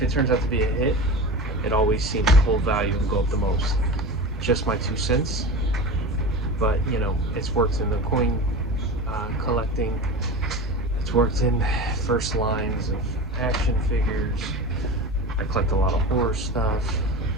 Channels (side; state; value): both; normal; correlation 0.30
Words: it turns out to be a hit, it always seems to hold value and go up the most. Just my 2 cents. But you know, it's worked in the coin collecting. It's worked in first lines of action figures. I collect a lot of horror stuff.